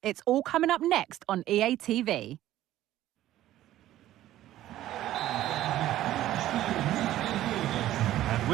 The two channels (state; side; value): quieter; left; 13.8 dB